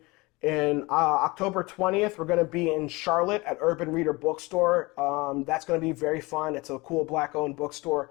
in October 20th, we're going to be in Charlotte at Urban Reader Bookstore. That's going to be very fun. It's a cool black-owned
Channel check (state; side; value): quieter; right; 23.7 dB